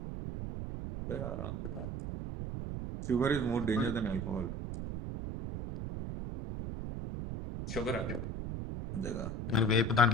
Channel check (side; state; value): right; noise; rumble, 5 dB below the sound